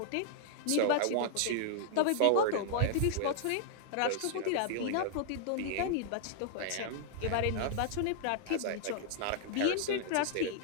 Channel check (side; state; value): both; different; correlation -0.01